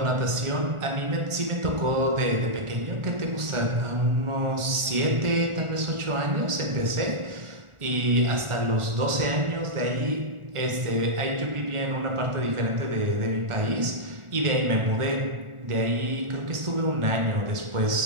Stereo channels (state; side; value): late; left; 1.4 ms